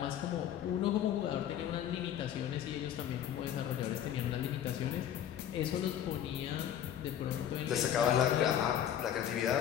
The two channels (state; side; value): quieter; right; 10.3 dB